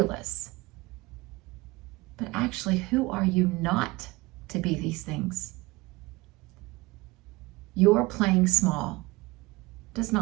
But actually, who are you not to be these things? Your playing small does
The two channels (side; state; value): left; quieter; 22.1 dB